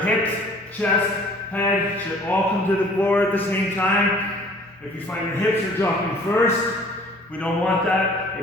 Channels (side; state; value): both; normal; correlation 0.52